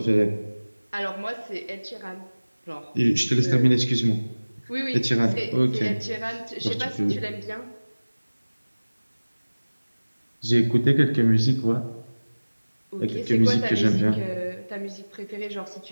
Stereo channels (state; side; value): inverted; both; correlation -1.00